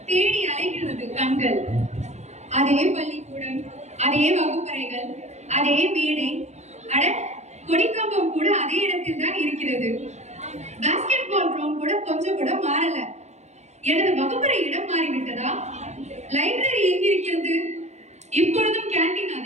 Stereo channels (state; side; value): late; left; 0.33 ms